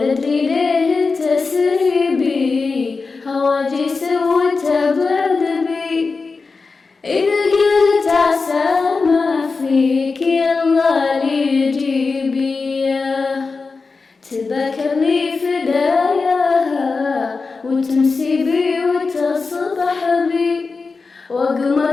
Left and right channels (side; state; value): right; quieter; 4.3 dB